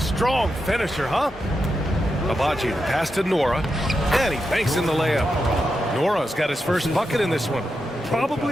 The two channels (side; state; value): both; normal; correlation 0.87